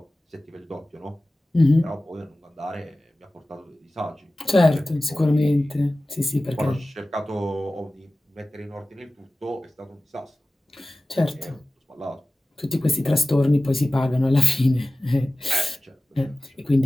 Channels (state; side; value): normal; both; correlation 0.95